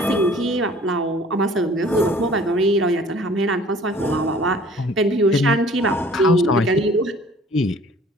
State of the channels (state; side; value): normal; both; correlation 0.51